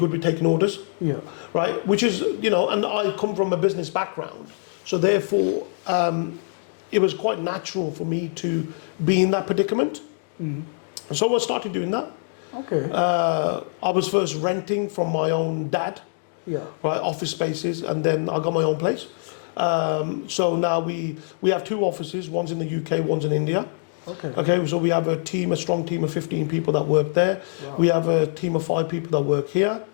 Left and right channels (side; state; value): right; silent; digital silence